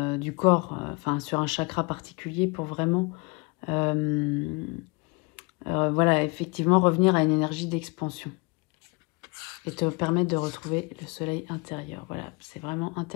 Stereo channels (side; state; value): right; quieter; 28.3 dB